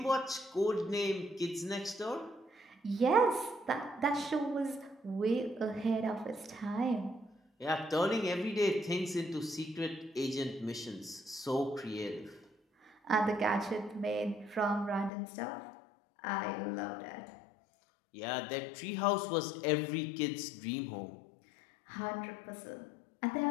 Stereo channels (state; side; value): drops out; right; at 15.1 s